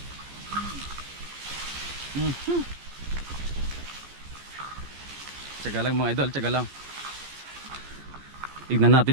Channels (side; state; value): left; late; 14 ms